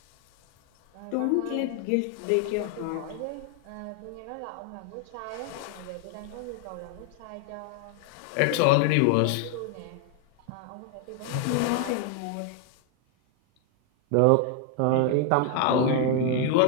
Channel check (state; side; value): different; both; correlation 0.00